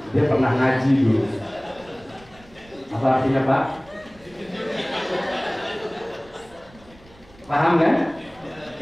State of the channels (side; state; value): right; noise; rumble, 25 dB below the sound